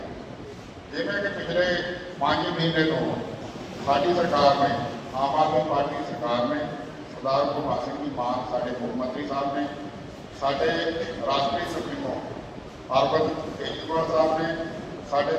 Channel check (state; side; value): identical; both; correlation 1.00